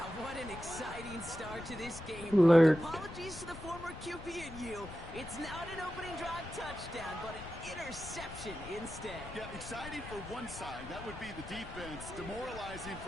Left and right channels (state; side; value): noise; left; rumble, 12 dB below the sound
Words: what an exciting start to this game. Alert. Apologies to the former QB and you. It's not an opening drive touchdown, but an interception instead. Yeah, exciting for one side. That would be the defense. Demoralizing